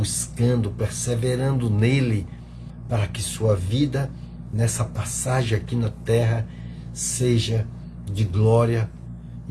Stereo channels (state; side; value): identical; both; correlation 1.00